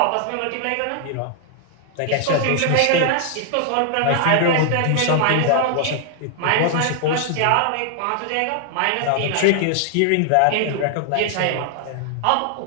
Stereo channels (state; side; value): different; both; correlation 0.00